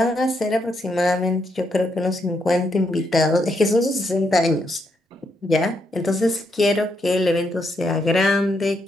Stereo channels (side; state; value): both; normal; correlation 0.78